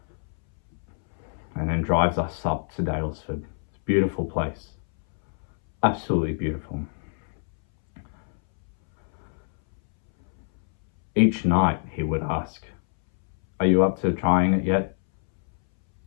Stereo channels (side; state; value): right; silent; 61 dB below the other